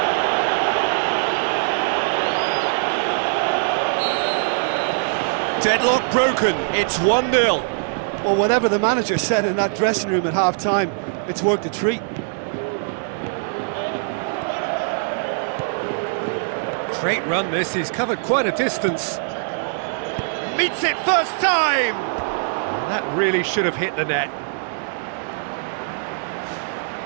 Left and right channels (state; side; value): silent; left; digital silence